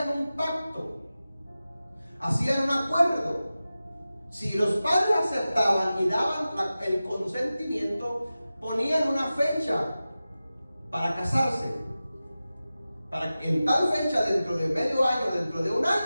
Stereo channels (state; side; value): inverted; both; correlation -0.95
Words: un pacto, hacían un acuerdo. Si los padres aceptaban y daban el consentimiento, ponían una fecha para casarse, para que en tal fecha, dentro de medio año, dentro de un